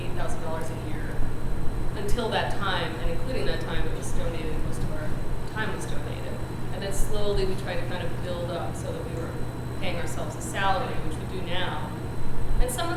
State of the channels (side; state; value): both; identical; correlation 1.00